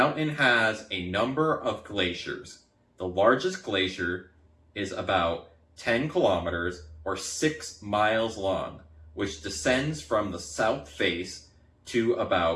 has a number of glaciers. The largest glacier is about 10 kilometers or 6 miles long, which descends from the south face to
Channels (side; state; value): both; identical; correlation 1.00